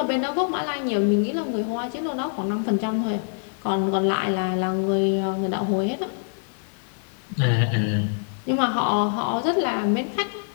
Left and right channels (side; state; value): right; silent; 61 dB below the other